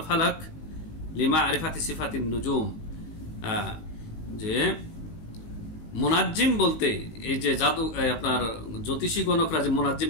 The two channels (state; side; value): late; right; 19 ms